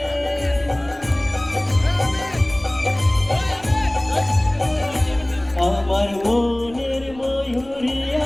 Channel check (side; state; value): left; noise; rumble, 23 dB below the sound